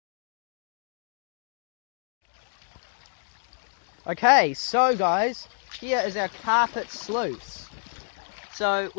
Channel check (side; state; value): right; silent; digital silence